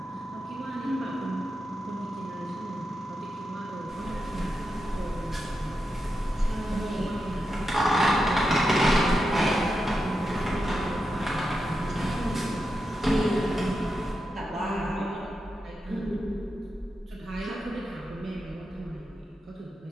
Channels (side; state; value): both; normal; correlation 0.88